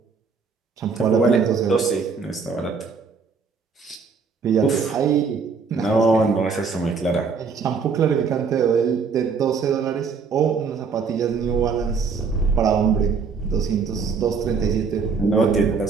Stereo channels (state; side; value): quieter; left; 5.3 dB